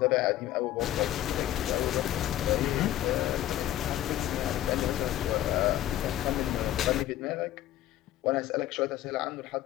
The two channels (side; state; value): right; quieter; 13.4 dB